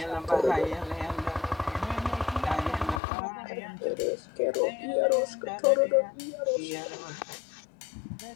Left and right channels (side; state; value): right; drops out; at 3.0 s